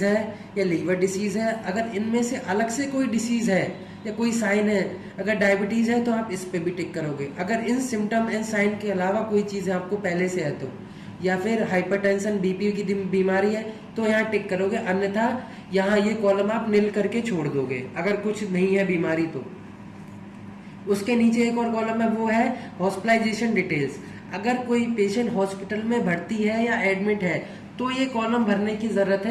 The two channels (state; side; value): identical; both; correlation 1.00